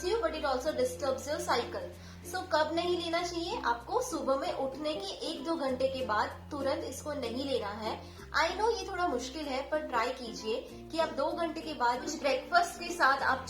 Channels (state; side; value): identical; both; correlation 1.00